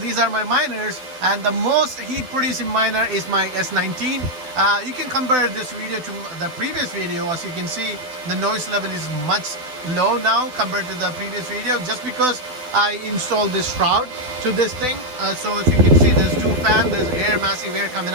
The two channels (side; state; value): left; late; 12 ms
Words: are my miners, and the most heat producing miner is my S19. You can compare this video to the previous video. As you can see, the noise level is much low now compared to the previous video, just because I installed this shroud to this thing. So if you can see, there's two fans, there's air, massive air coming